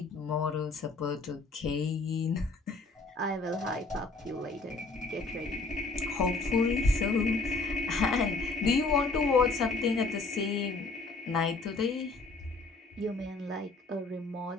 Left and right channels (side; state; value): right; quieter; 3.6 dB